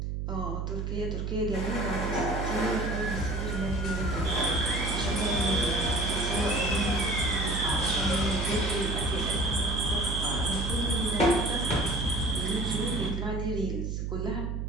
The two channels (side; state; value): right; noise; hum, 2 dB below the sound